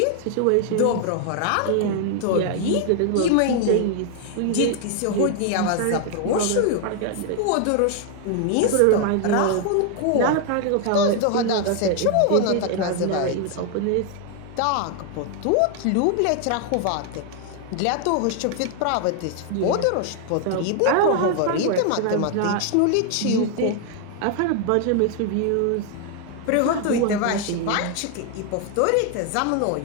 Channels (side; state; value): both; different; correlation 0.00